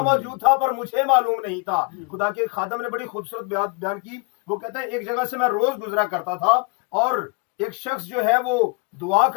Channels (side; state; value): right; quieter; 31.4 dB